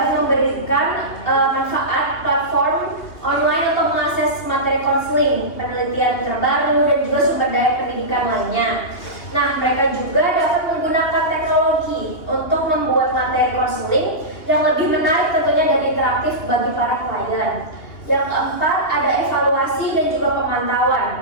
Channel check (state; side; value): late; right; 2.8 ms